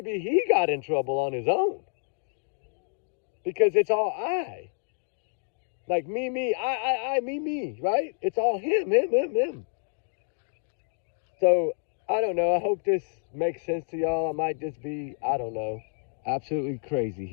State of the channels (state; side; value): silent; right; 59 dB below the other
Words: he got in trouble on his own. Because it's all I. Like me, I, me, right? It's all him. So, I don't know. I hope this makes sense to y'all. I might just be, I don't know, absolutely crazy